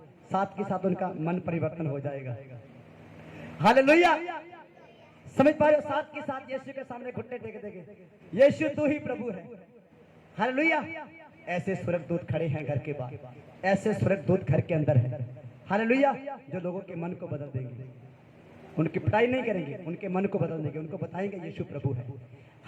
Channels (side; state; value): both; identical; correlation 1.00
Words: साथ के साथ उनका मन परिवर्तन हो जाएगा। हालेलुया। समझ पा रहे हो? साथ के साथ यीशु के सामने घुटने टेक देंगे, यीशु तू ही प्रभु है। हालेलुया। ऐसे स्वर्गदूत खड़े हैं घर के बाहर, ऐसे स्वर्गदूत घर के अंदर है। हालेलुया। जो लोगों के मन को बदल देंगे, उनकी पिटाई नहीं करेंगे, उनके मन को बदल देंगे, उनको बताएंगे यीशु प्रभु है।